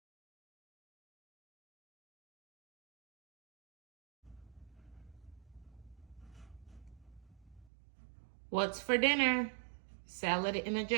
What's for dinner? Salad in a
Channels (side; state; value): left; drops out; at 7.7 s